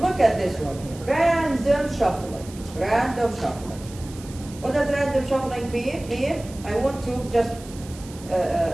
look at this one here. Random shuffling. Random shuffling. What does random shuffling mean? I want to just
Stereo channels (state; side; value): noise; right; hiss, 19 dB below the sound